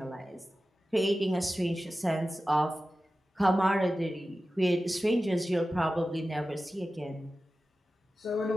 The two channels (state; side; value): normal; both; correlation 0.94